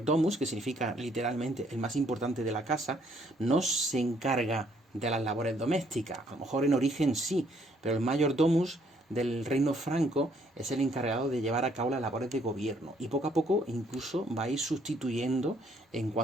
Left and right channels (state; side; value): normal; both; correlation 0.67